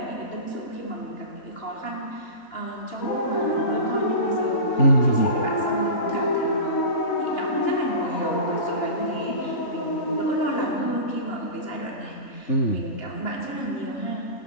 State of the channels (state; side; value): late; right; 3.0 ms